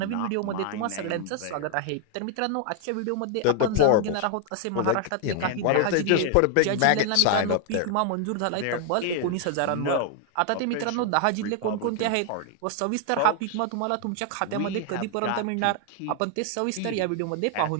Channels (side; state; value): both; different; correlation 0.00